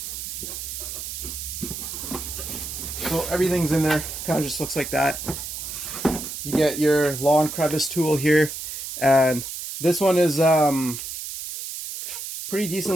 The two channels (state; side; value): noise; right; hiss, 7 dB below the sound